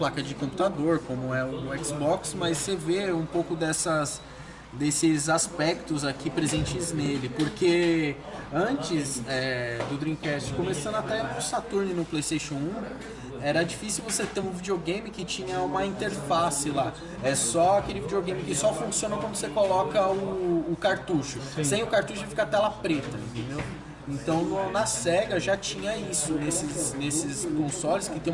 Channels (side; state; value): both; identical; correlation 1.00